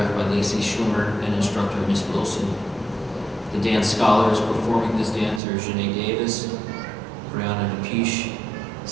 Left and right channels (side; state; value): left; drops out; at 5.4 s